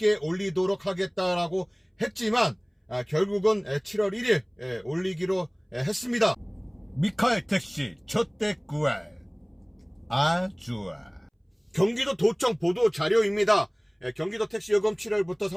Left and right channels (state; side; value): identical; both; correlation 1.00